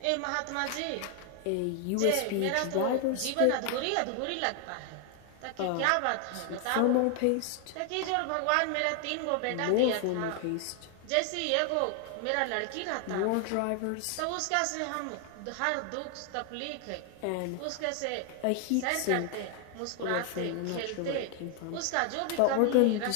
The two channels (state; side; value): different; both; correlation 0.00